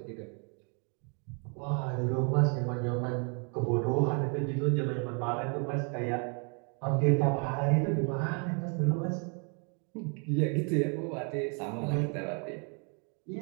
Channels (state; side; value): quieter; left; 37.7 dB